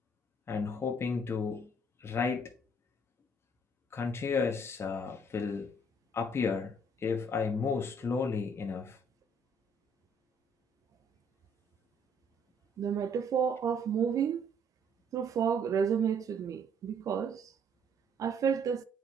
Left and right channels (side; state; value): both; normal; correlation 0.63